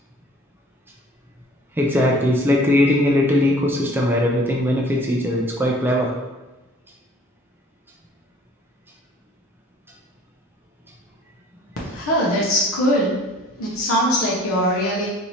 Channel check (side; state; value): both; normal; correlation 0.52